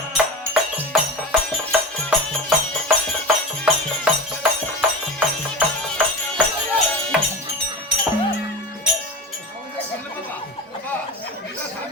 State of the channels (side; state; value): both; normal; correlation 0.28